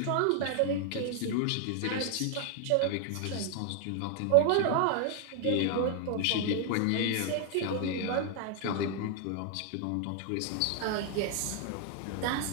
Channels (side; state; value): both; different; correlation 0.00